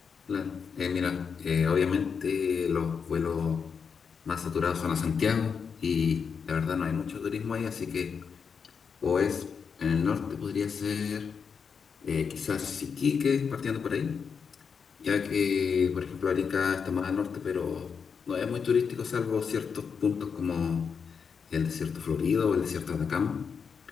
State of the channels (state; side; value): quieter; right; 6.2 dB